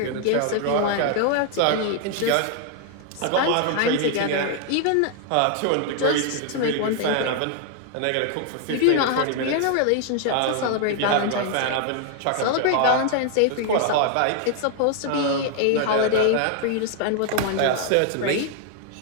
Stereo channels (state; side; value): different; both; correlation 0.00